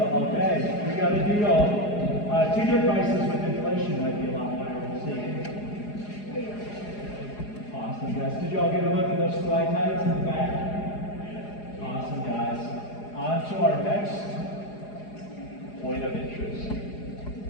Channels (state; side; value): late; right; 4.8 ms